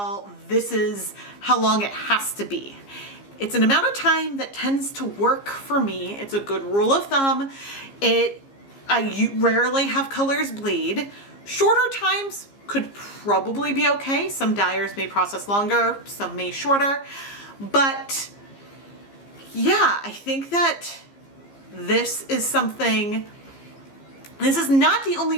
this is how long it has to be. It's an amount of time that tends to work for me. It's a good rule of thumb. I rarely have colors bleed. Shorter times could probably be okay. Some dyers may process longer, some may shorter. But yeah, I think that this is something, this is not the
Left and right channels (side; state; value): right; late; 15 ms